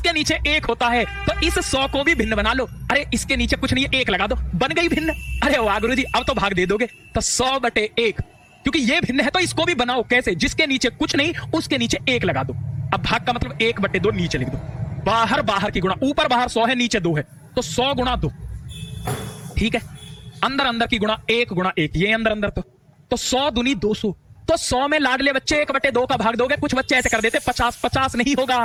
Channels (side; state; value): both; identical; correlation 1.00